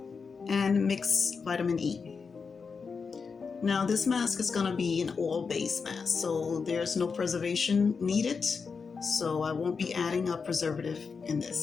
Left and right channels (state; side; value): quieter; right; 5.3 dB